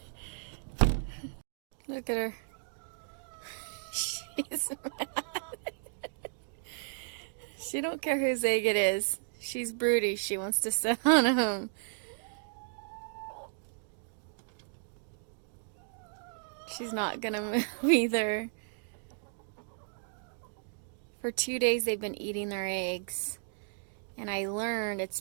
Look at her. She's mad. She don't care whose egg it is. She's broody. She wants to sit on him. She's not gonna move either. For 2 days they've been eating their eggs. And I learned it's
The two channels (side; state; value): left; silent; digital silence